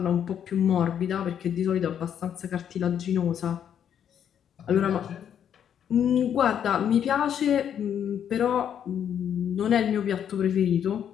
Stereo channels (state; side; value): quieter; right; 9.0 dB